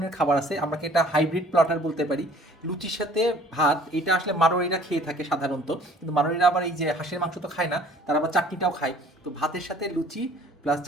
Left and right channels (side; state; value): both; normal; correlation 0.53